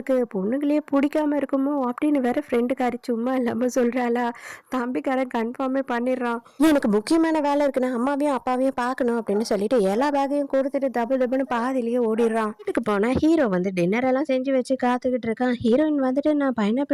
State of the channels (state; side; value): identical; both; correlation 1.00